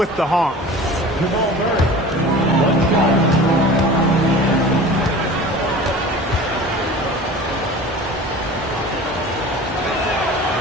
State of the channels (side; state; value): both; normal; correlation 0.39